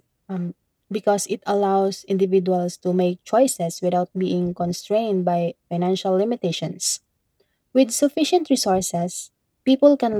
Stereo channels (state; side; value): identical; both; correlation 1.00